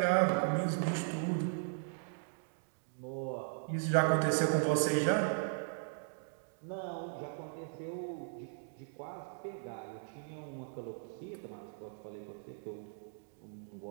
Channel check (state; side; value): silent; left; digital silence